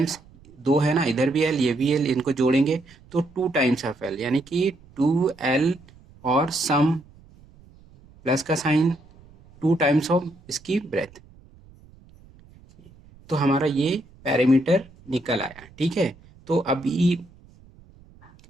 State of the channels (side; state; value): right; noise; rumble, 26 dB below the sound